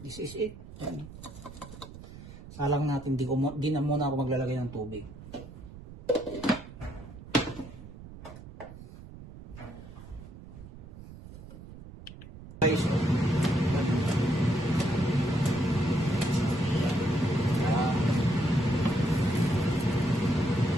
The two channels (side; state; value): right; noise; rumble, 15 dB below the sound